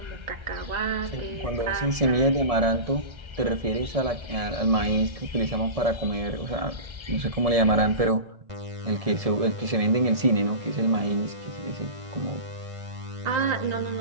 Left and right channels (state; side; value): late; left; 1.7 ms